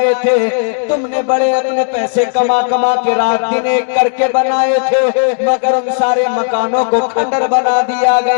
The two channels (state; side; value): silent; right; digital silence